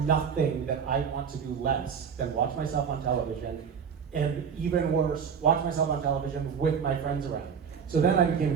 that I want to do less than watch myself on television, and even worse, watch myself on television with my friends around. So then I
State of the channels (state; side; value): quieter; left; 6.9 dB